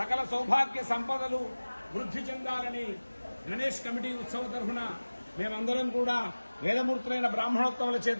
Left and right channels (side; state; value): both; inverted; correlation -1.00